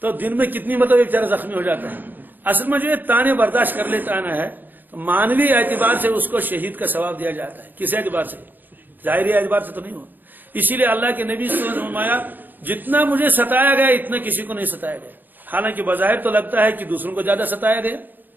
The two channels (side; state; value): left; late; 0.088 ms